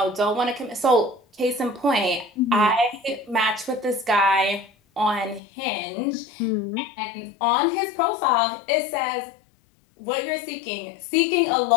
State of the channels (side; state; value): right; drops out; at 5.4 s